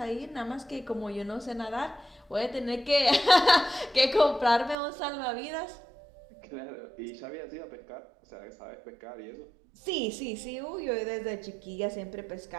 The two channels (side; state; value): left; drops out; at 4.8 s